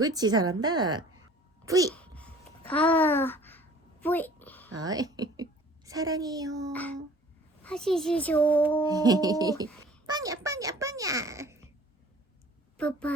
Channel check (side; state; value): both; normal; correlation 0.49